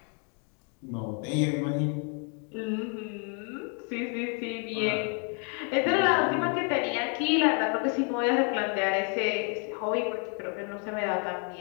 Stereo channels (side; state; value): right; quieter; 39.3 dB